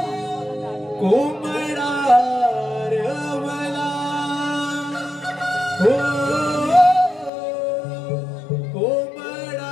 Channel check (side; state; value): right; drops out; at 7.3 s